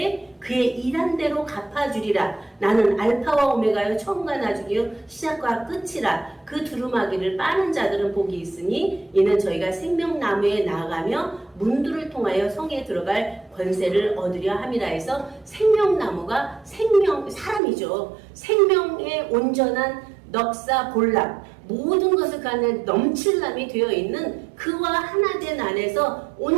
그의 일한 대로 갚아주리라. 나는 알파와 오메가여 처음과 나중이요 시작과 끝이라. 그 두루마기를 빠는 자들은 복이 있으니 이는 저희가 생명나무에 나아가며 문들을 통하여 성에 들어갈 권세를 얻으려 함이라 해서 생명나무가 사람이죠. 생명의 온전한 넉사 볼람 모든 것을 그 안에 넘칠람이 되어 있는 그와 하나 된 안에서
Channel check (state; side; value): drops out; left; at 17.6 s